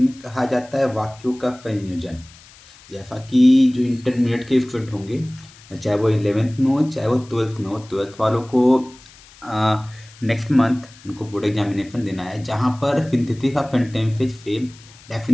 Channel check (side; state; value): left; noise; hiss, 23 dB below the sound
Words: कहा जाता है वाक्यों का संयोजन। जैसा कि जो इंटरमीडिएट के स्टूडेंट होंगे, चाहे वो 11th में हो चाहे वो 12th में हो, 12th वालों को नेक्स्ट मंथ उनको बोर्ड एग्जामिनेशन देना है, जहाँ पर सिंथेसिस ऑफ सेंटेंसेस से